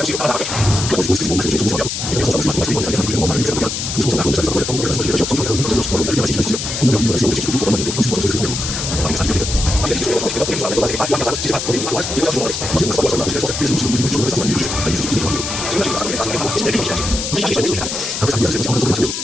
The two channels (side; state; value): left; noise; hiss, 4 dB below the sound